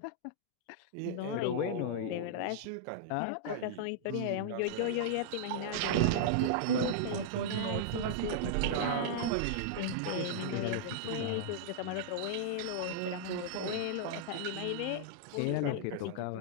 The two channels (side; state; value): both; different; correlation -0.02